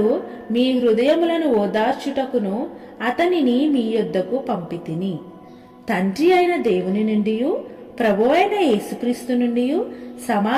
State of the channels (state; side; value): identical; both; correlation 1.00